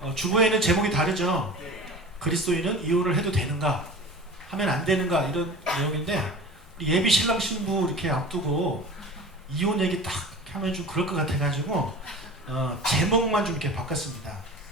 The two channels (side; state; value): both; normal; correlation 0.37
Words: 주보에는 제목이 다르죠. 그리스도인은 이혼을 해도 되는가, 하면 안 되는가, 이런 내용인데 예비 신랑 신부 이렇게 앞두고 이혼 얘기 딱 하면 좀 그럴 것 같아가지고 제목만 좀 이렇게 바꿨습니다.